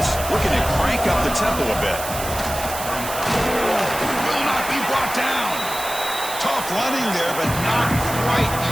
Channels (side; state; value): right; noise; hiss, 8 dB below the sound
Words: looking to crank up the tempo a bit. Will not be brought down. Tough running there, but not quite